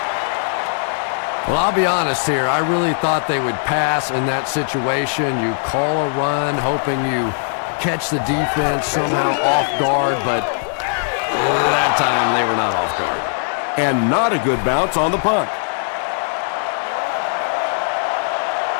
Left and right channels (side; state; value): right; silent; digital silence